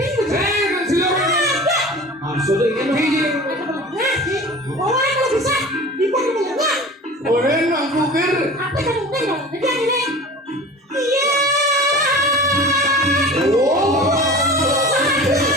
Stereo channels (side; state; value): both; normal; correlation 0.38